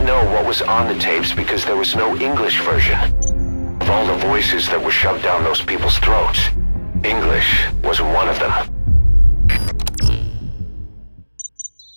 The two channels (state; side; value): inverted; both; correlation -1.00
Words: know what was on the tapes because there was no English version. Of all the voices that were shoved down those people's throats, English was one of them.